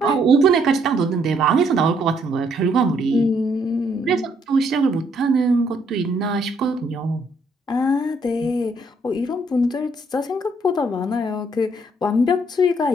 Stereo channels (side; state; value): both; normal; correlation 0.69